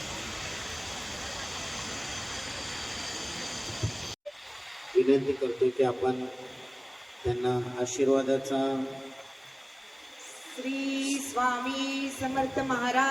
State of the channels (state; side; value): identical; both; correlation 1.00